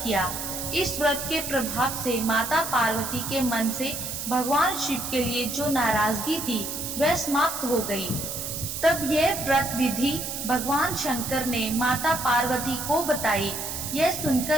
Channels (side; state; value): right; noise; hiss, 5 dB below the sound